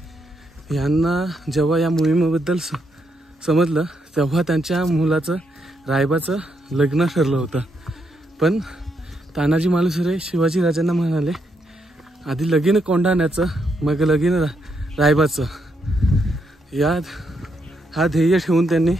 यांना जेव्हा या मोहिमेबद्दल समजलं तेव्हा त्यांच्या मुलाचं रायबाचं लग्न ठरलं होतं. पण तानाजी मालुसरे शिवाजी राजांना म्हणाले, आधी लगीन कोंढाण्याचं मग लगीन रायबाचं. हा ध्येय ठेवून त्यांनी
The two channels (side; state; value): both; normal; correlation 0.78